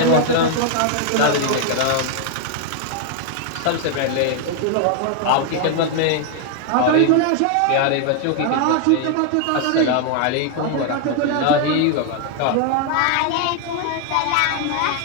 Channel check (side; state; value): both; different; correlation 0.00